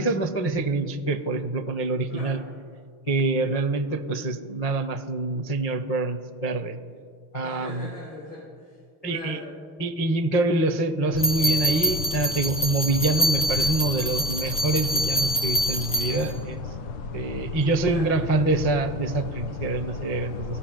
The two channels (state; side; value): late; right; 6.2 ms